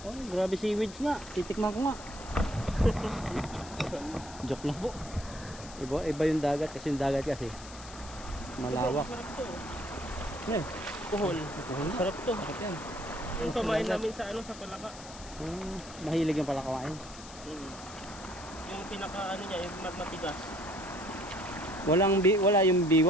Oh, grabe seaweeds nga. Titikman ko nga. Joke lang po. Iba yung dagat kasi yung dagat kasi malawak. Sarap to. Eh, Kuhol. Sarap to. sarap yan. Yung pamain namin sa ano, sa palaka. Mahilig yung pala kawain. Yung pinaka ano niya, yung matigas. Wala yung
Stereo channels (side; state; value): left; noise; hiss, 16 dB below the sound